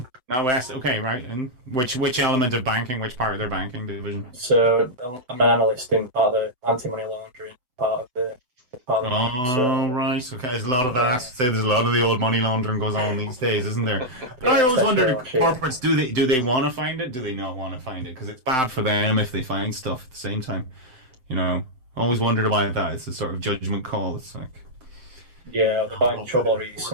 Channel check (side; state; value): left; late; 7.8 ms